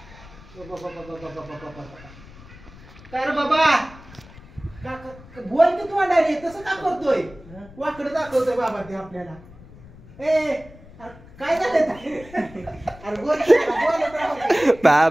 काय रे बाबा बोल की तू अंडारी तसं का करतोय वाकडं दाखवतोय बाबा ते आपल्याला ए काय झालं अरे बोलत राहू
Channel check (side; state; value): left; noise; rumble, 20 dB below the sound